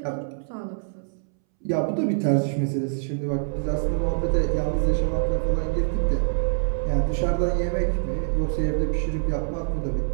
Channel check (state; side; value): silent; left; 62 dB below the other